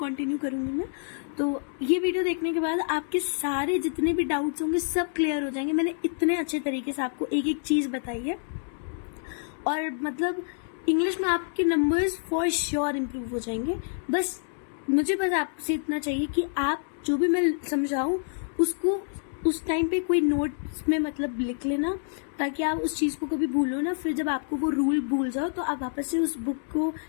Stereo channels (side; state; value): right; silent; digital silence